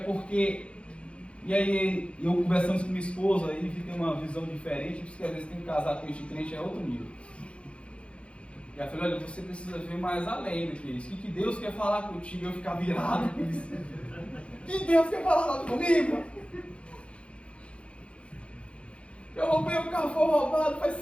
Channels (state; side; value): late; right; 0.059 ms